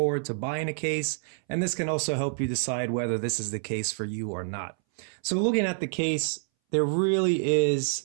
to buying a case, and this can also help you decide whether this is the case for you or not. So looking at the case, there really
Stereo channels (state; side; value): silent; left; 60 dB below the other